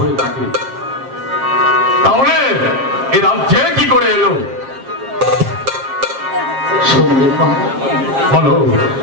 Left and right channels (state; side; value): late; left; 7.5 ms